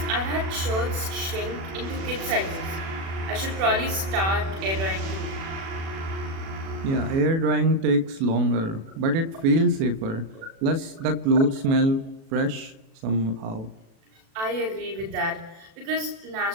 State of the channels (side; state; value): left; late; 36 ms